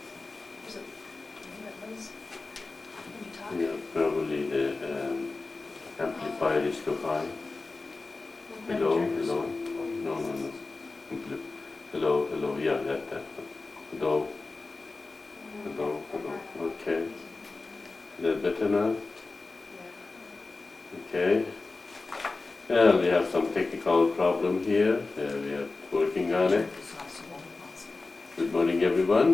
Yeah, probably the amplifier is too high. Hello, hello. No, no, no. Hello, hello. Yeah, that. Hello, hello, hello. Okay. Is that better now? Okay. We have some technical problem here. We are working on it. Good morning,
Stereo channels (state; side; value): quieter; right; 3.6 dB